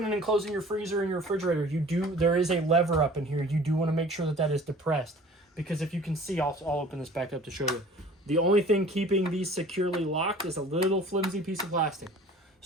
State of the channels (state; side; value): normal; both; correlation 0.47